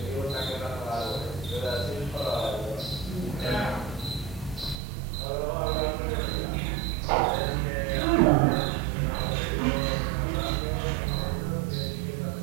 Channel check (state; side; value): drops out; left; at 4.8 s